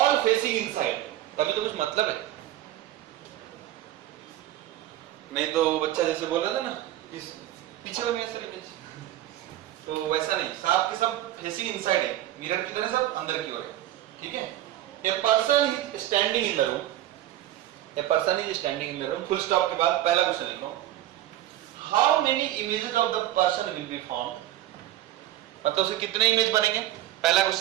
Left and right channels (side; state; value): left; quieter; 13.9 dB